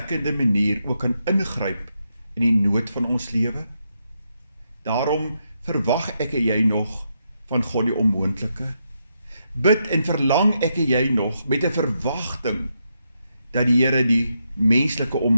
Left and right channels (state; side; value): inverted; both; correlation -0.81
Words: manier ook kan ingryp in die nood van ons lewe? Daarom verwag ek en jy nog van God die onmoontlike. Bid en verlang ek en jy nog met 'n verwagting dat die Here die menslike